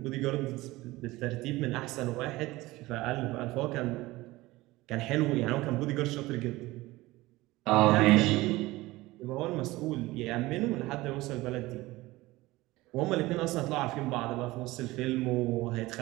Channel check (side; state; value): left; quieter; 19.4 dB